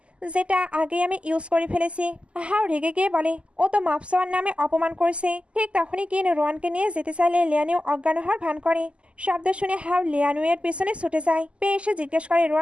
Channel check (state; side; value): late; left; 0.055 ms